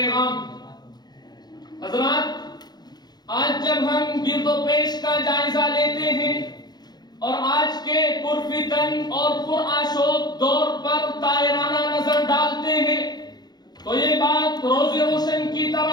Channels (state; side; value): late; right; 0.20 ms